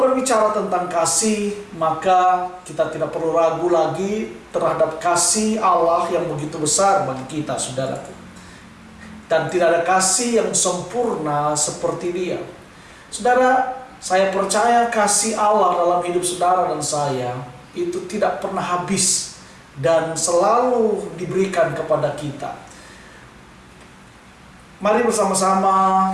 berbicara tentang kasih, maka kita tidak perlu ragu lagi terhadap kasih Allah yang begitu besar bagi kita, saudaraku. Dan tidak ada kasih yang sempurna seperti Dia. Saudara, saya percaya kasih Allah dalam hidup saudara dan saya itu tidak pernah habis dan selalu diberikan kepada kita. Mari bersama-sama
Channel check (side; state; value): both; identical; correlation 1.00